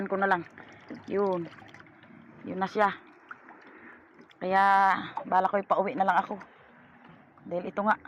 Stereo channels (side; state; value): both; identical; correlation 1.00